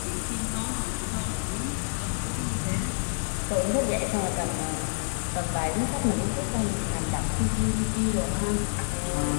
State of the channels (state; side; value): silent; right; 56 dB below the other